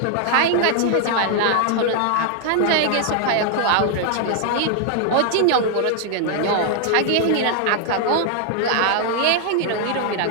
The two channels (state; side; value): different; both; correlation 0.00